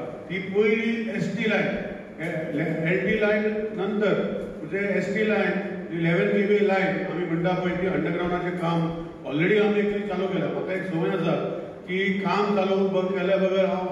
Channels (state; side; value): identical; both; correlation 1.00